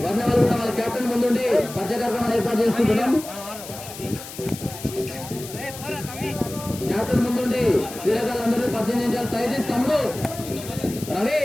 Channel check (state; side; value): noise; left; hiss, 13 dB below the sound